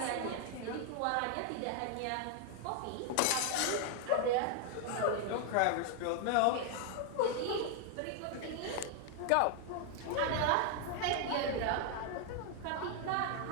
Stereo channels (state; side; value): different; both; correlation 0.00